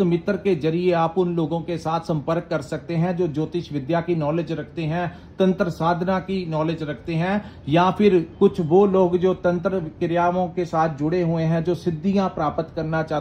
मित्र के जरिए आप उन लोगों के साथ संपर्क कर सकते हैं जो ज्योतिष विद्या की नॉलेज रखते हैं, तंत्र साधना की नॉलेज रखते हैं, या फिर कुछ वो लोग जो तंत्र क्रियाओं के साथ जुड़े हुए हैं, जो सिद्धियां प्राप्त करना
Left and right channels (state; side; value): identical; both; correlation 1.00